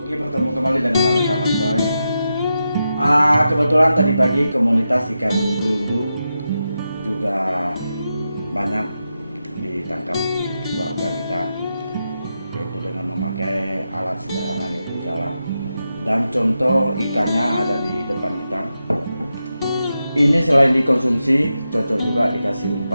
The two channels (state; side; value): inverted; both; correlation -0.88